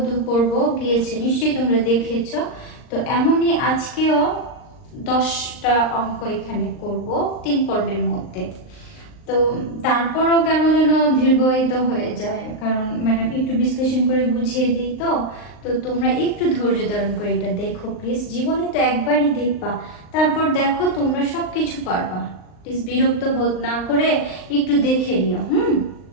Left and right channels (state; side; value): late; right; 39 ms